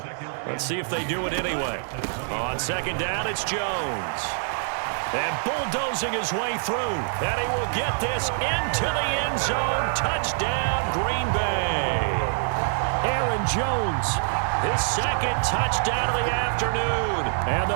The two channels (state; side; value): silent; left; 62 dB below the other